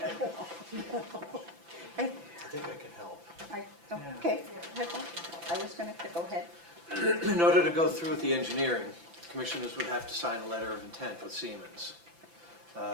I think I can help. Okay, I was going to go ahead. In order to go through with the engineering, commissioners would have to sign a letter of intent with Siemens.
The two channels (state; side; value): late; left; 5.9 ms